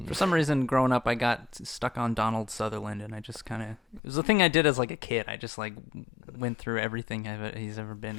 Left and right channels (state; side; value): drops out; right; at 4.0 s